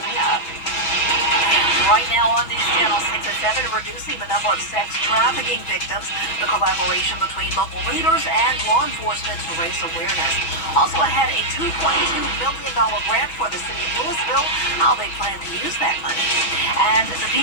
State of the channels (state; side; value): late; right; 6.2 ms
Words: up. Right now on News Channel 6 and 7, reducing the number of sex trafficking victims, the collaboration between local leaders and law enforcement to raise awareness. Also ahead, a $2.2 million grant for the city of Louisville, how they plan to use that money. And the